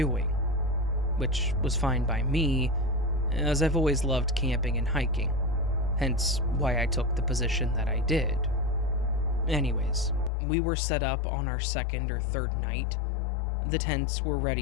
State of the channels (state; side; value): drops out; right; at 10.3 s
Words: which was fine by me, as I've always loved camping and hiking, hence why I took the position that I did. Anyways, we were set up on our second or third night. The tents were